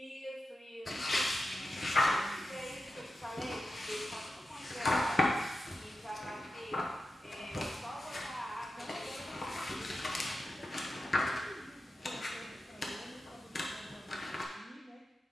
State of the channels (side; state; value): both; normal; correlation 0.91